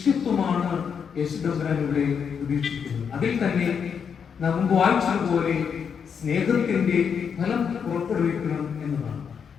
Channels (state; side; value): quieter; right; 6.9 dB